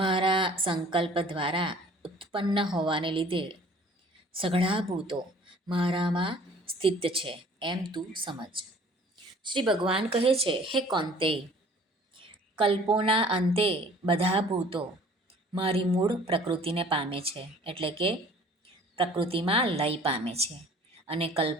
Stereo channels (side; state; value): both; normal; correlation 0.52